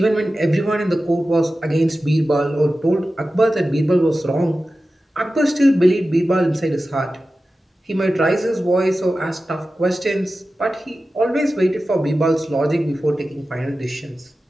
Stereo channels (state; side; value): normal; both; correlation 0.94